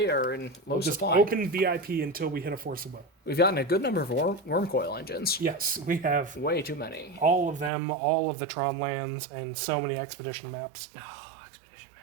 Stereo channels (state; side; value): drops out; left; at 7.7 s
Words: are in low We'll just supply. open VIP until we hit a Force of Will. We've gotten a good number of worm coil engines. Yes, we have Way too many. all of them, all of the Tron lands, and so many expedition maps. Oh, expedition